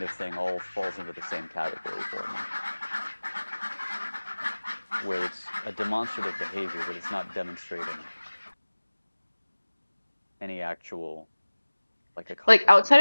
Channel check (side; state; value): both; inverted; correlation -1.00